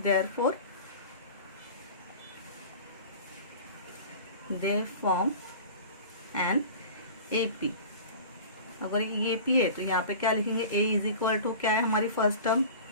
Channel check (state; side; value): inverted; both; correlation -0.38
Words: therefore they form an AP. अगर ये एपी है तो यहाँ पे क्या लिखेंगे? ए इज इक्वल टू क्या है हमारी फर्स्ट टर्म?